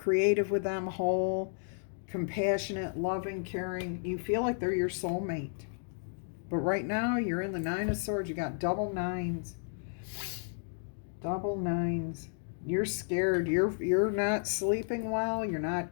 with them, whole, compassionate, loving, caring. You feel like they're your soulmate. But right now, you're in the Nine of Swords. You got double nines. Double nines. You're scared. You're not sleeping well. You're not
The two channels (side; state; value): right; silent; digital silence